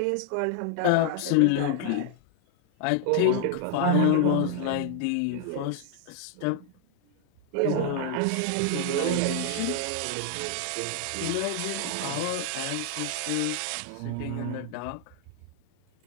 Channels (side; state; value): both; different; correlation 0.00